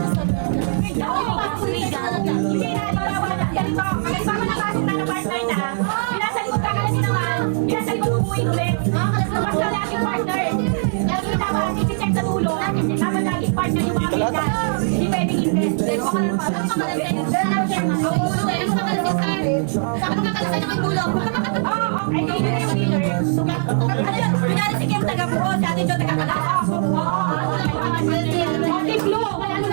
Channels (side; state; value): left; silent; 65 dB below the other